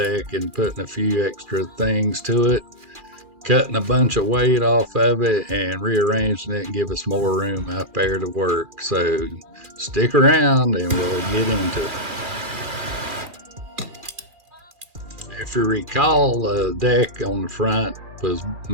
and putting a few extra things to it, cutting a bunch of weight off of it, and rearranging it and give us more room out there to work. So stick around and we'll get into it. If you recall, the deck on the front was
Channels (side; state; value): left; late; 2.4 ms